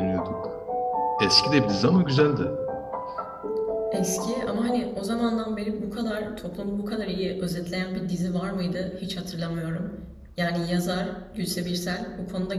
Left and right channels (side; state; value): both; identical; correlation 1.00